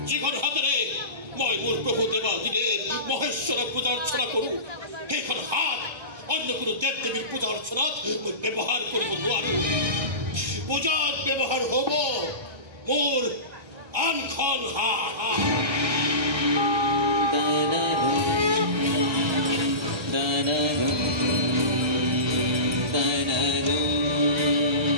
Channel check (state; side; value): late; left; 1.2 ms